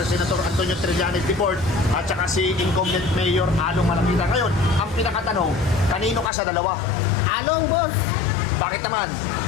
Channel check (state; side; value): drops out; right; at 6.3 s